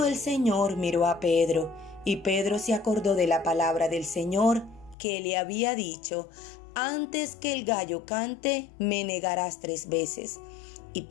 el Señor, miró a Pedro, y Pedro se acordó de la palabra del Señor que le había dicho: Antes que el gallo cante, me negarás 3 veces. Y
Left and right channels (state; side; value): drops out; right; at 5.0 s